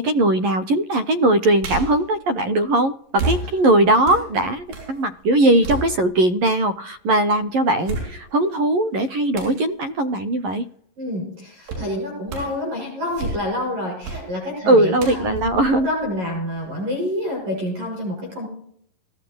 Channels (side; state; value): left; late; 11 ms